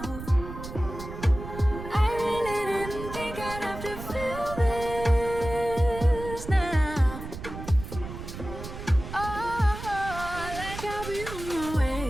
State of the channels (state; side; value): noise; right; rumble, 10 dB below the sound